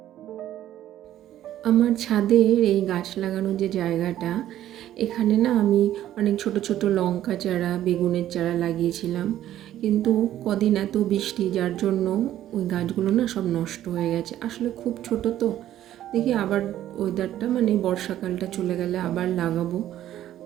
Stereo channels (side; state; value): left; quieter; 12.4 dB